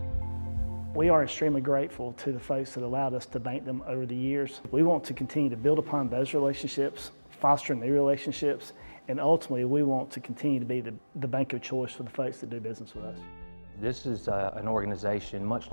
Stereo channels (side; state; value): both; inverted; correlation -1.00